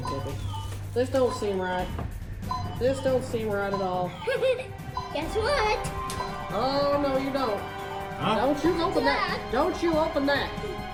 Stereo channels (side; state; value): both; identical; correlation 1.00